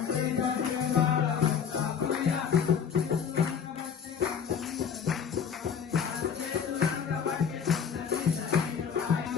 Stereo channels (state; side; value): quieter; right; 7.2 dB